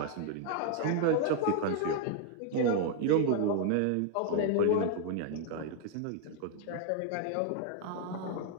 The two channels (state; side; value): different; both; correlation 0.00